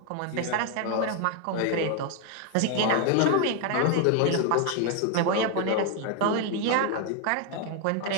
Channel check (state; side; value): different; both; correlation 0.01